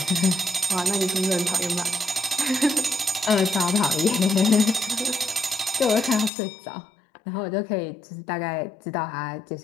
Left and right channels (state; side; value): drops out; right; at 6.3 s